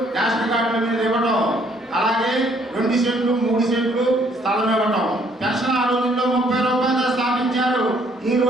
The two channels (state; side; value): normal; both; correlation 0.65